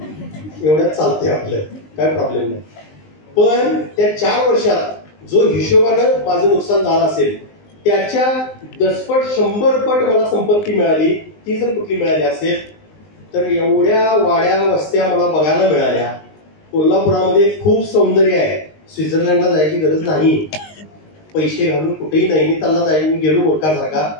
एवढ्यात चालतंय आपलं, काय प्रॉब्लेम नाही. पण त्या 4 वर्षात जो हिशोबानं माझं नुकसान झालं असेल त्याच्या 10 पट 100 पट मला संपत्ती मिळाली. ती जर कुठली मिळाली असेल तर एवढ्या वाड्या वस्त्या मला बघायला मिळाल्या. कोल्हापुरामध्ये खूप सौंदर्य आहे. स्वित्झर्लंडला जायची गरज नाही. पैसे घालून कुठेही नाही. मी त्यांना जायला मी गेलो मूर्खासारखा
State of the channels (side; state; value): right; late; 19 ms